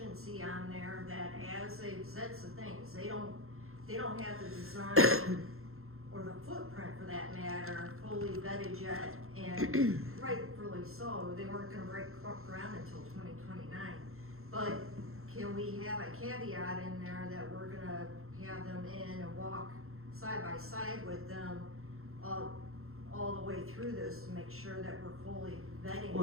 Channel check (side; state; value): left; late; 0.62 ms